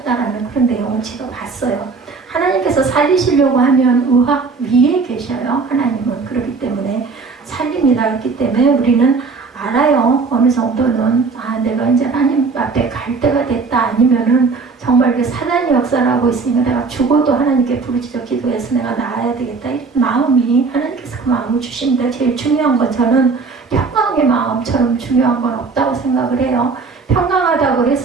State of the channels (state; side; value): quieter; left; 4.6 dB